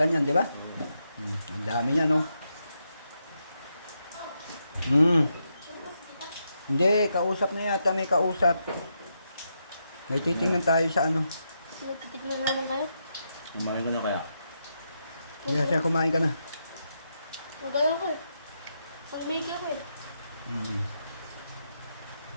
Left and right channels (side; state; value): both; inverted; correlation -0.83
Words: yan, di ba? Ang dami yan, oh. Hindi, kausap na yata. May kausap. May titingnan tayo sa ano. Nagtitignan naman kayo? Kumain ka na kaya? Yes, kumain ka na. Magalaw ko eh. Ang Mickey ako eh.